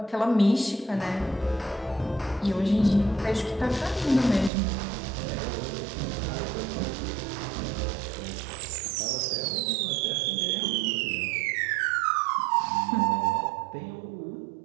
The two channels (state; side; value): drops out; left; at 4.5 s